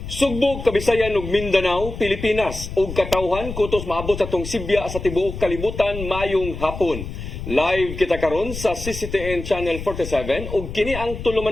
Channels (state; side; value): noise; left; rumble, 9 dB below the sound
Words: Sugbog, Kabisayan ug Mindanao, Pilipinas ug katawhan kutos maabot sa tong Sibya sa tibuok kalibutan mayong hapon. Live kita karon sa CCTN Channel 47 ug kini ang